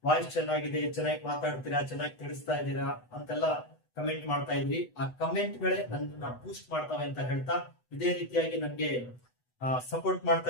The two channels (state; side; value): late; right; 8.0 ms